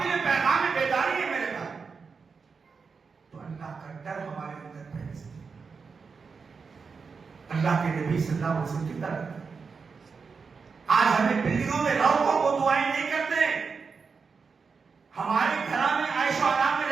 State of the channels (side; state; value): left; quieter; 5.2 dB